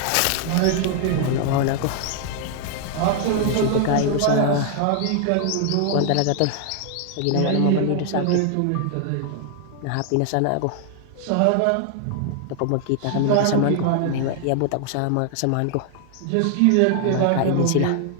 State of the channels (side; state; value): both; different; correlation 0.00